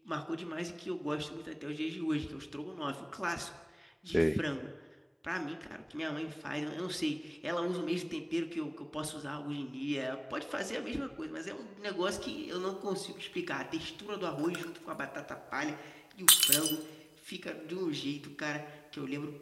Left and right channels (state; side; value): identical; both; correlation 1.00